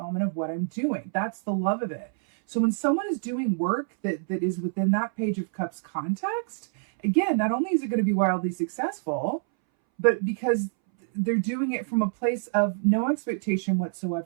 of what I'm doing. That's the love of it. So when someone is doing work that is within that Page of Cups context, again, not only is it going to be wildly successful, but because they're doing it from a place of no expectation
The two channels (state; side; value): silent; left; 61 dB below the other